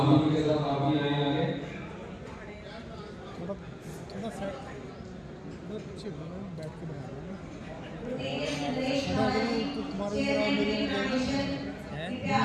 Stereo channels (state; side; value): identical; both; correlation 1.00